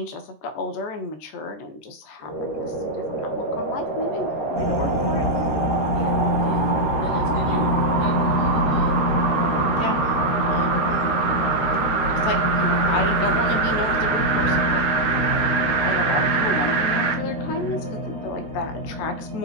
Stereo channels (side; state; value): right; late; 13 ms